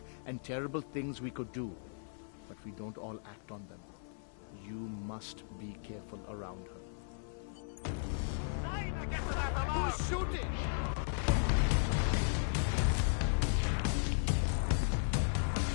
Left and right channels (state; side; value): silent; right; 54 dB below the other